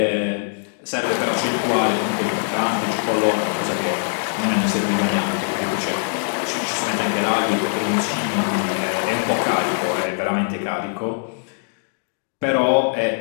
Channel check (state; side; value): silent; right; digital silence